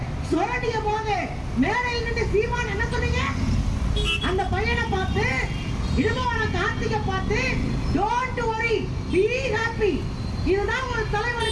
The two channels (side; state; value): both; identical; correlation 1.00